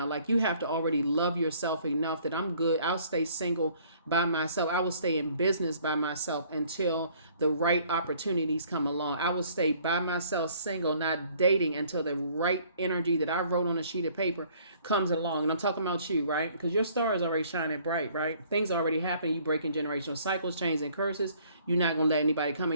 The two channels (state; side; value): inverted; both; correlation -0.59